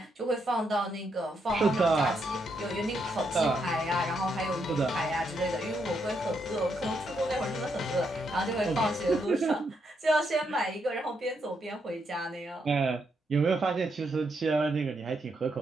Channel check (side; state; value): both; normal; correlation 0.79